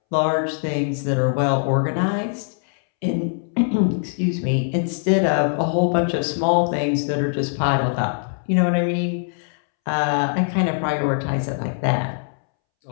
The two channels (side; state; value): right; silent; 64 dB below the other